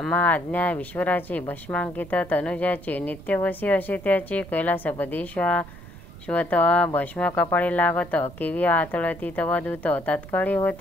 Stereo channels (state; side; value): noise; right; rumble, 17 dB below the sound